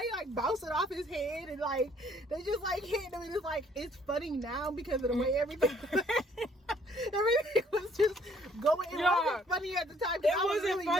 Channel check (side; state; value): both; normal; correlation 0.62